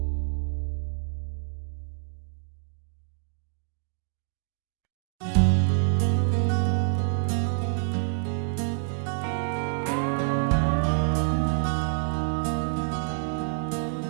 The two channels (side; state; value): left; silent; 60 dB below the other